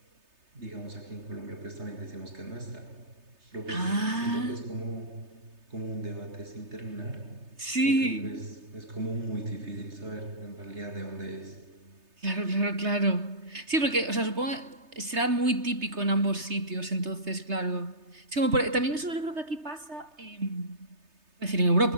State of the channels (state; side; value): late; left; 3.3 ms